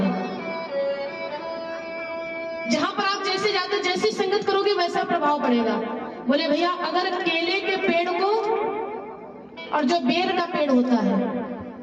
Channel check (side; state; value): both; identical; correlation 1.00